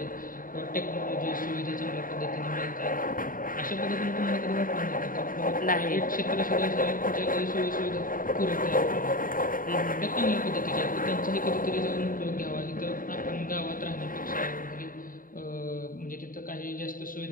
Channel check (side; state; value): right; late; 0.40 ms